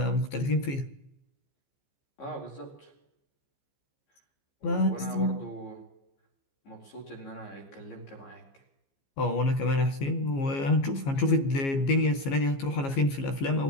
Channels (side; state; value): right; late; 15 ms